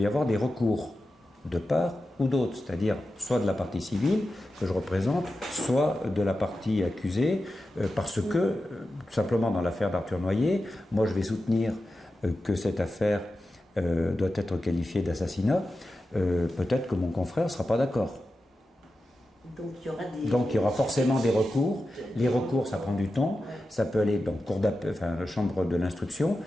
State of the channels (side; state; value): both; normal; correlation 0.92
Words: avoir des recours de part ou d'autre, c'est-à-dire soit de la partie civile que je représente, soit de la partie accusée, parce que, tout simplement dans l'affaire d'Arthur Noyer, moi je vais soutenir que cette affaire doit être qualifiée d'assassinat, peut-être que mon confrère ne sera pas d'accord. Donc il y aura forcément des recours. Les recours, ça prend du temps. Ça peut aller dans la chambre de l'instruction,